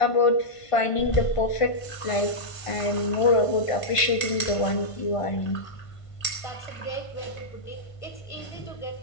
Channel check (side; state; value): right; late; 1.5 ms